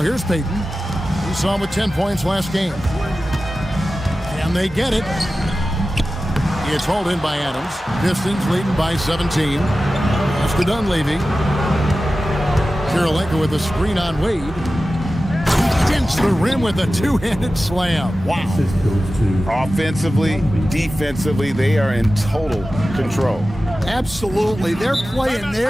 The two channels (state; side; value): normal; both; correlation 0.95